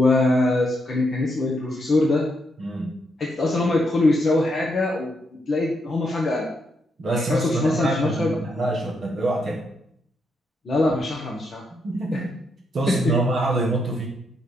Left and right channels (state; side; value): normal; both; correlation 0.79